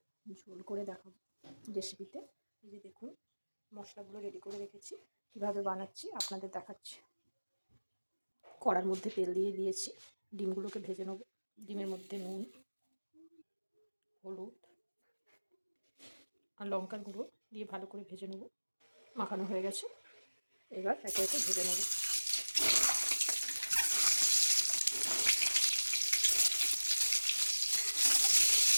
ঝোল করে দেখাবো রেসিপিতে। এই যে দেখুন, মশলাগুলো রেডি করে রেখেছি, কীভাবে বানাচ্ছি আপনাদের দেখাচ্ছি। কড়ার মধ্যে তেল দিয়ে দিয়েছি, ডিমগুলোকে ভেজে নেব। ডিমের মধ্যে নুন, হলুদ আর লঙ্কার গুঁড়ো দিয়ে ভালো করে ভেজে নেব। মাখানো হয়ে গেছে, এবার একে একে ভেজে নেব।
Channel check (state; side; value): inverted; both; correlation -1.00